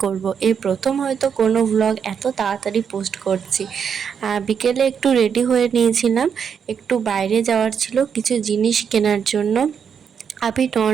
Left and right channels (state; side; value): quieter; left; 7.2 dB